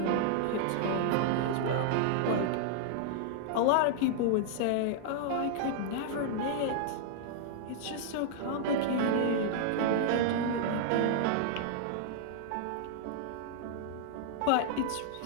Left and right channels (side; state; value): both; different; correlation -0.01